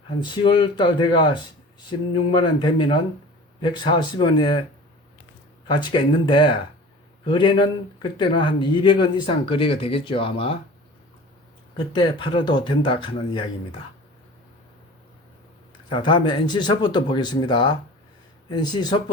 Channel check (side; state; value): both; normal; correlation 0.40